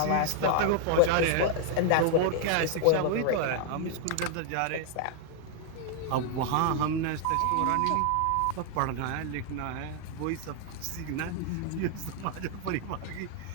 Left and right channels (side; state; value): both; different; correlation 0.00